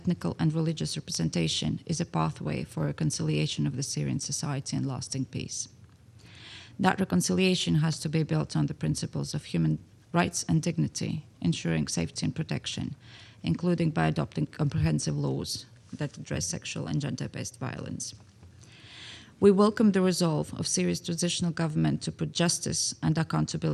and religious representation is a pathway for reconciliation of the Syrian society and lasting peace. That reconciliation has to be built on the principles of human rights and dignity, ensuring safety and protection, including by adopting comprehensive laws that address sexual and gender-based violence. We welcome the resolve of Syria's transitional government to put justice and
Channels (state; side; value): identical; both; correlation 1.00